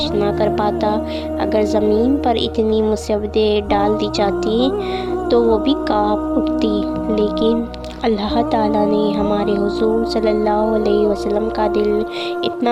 ना कर पाता। अगर ज़मीन पर इतनी मुसीबतें डाल दी जाती तो वो भी काँप उठती। लेकिन अल्लाह ताला ने हमारे हुजूर सल्लल्लाहु अलैहि वसल्लम का दिल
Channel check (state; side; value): identical; both; correlation 1.00